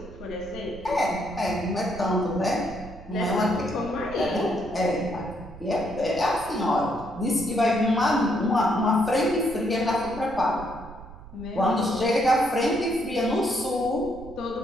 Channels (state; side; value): noise; right; rumble, 16 dB below the sound